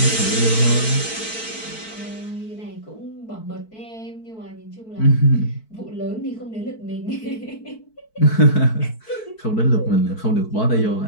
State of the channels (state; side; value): late; right; 4.5 ms